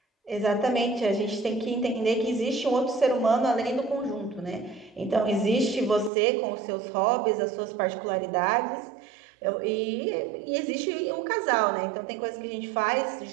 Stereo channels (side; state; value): left; drops out; at 6.1 s